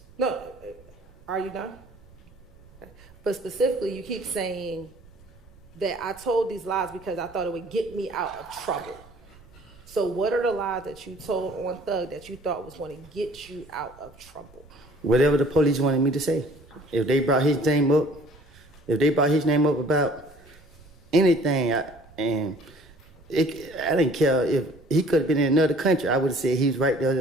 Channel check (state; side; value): noise; right; rumble, 25 dB below the sound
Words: No, are you done? Okay. But specifically, you keep saying that I told these lies because I thought it would get me out of trouble. So what are the lies that you told on Thug that you thought was going to get you out of trouble? Whatever the police wanted me to say. If they brought his name up, about anything, I didn't care if he could have been in another country. I would have said he was right